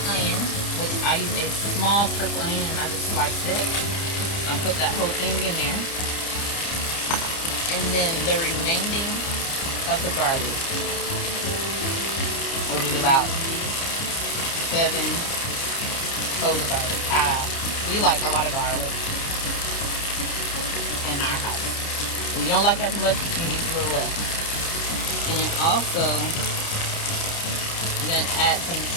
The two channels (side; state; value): right; late; 30 ms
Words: onion, which I use a small purple onion and I just sliced it. I'll put that whole thing in there. And then the remaining of the garlic, which is about 7 cloves of garlic. We like a lot of garlic in our house. If you don't like as much, you can use a little less. And then also, I'm going to add some